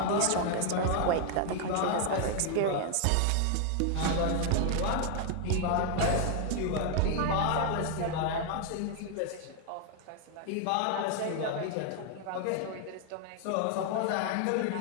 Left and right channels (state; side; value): different; both; correlation 0.00